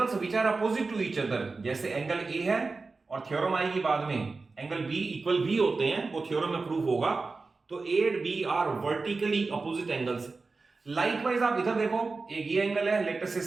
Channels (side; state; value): left; quieter; 4.0 dB